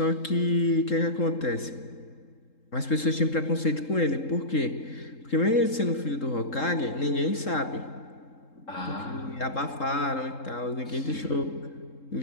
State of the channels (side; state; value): right; late; 3.7 ms